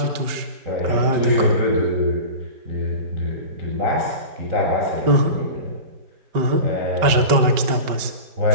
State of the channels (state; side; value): late; left; 5.2 ms